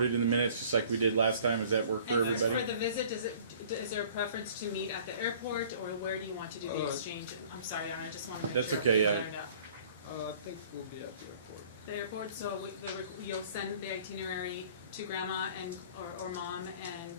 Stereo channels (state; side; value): inverted; both; correlation -0.51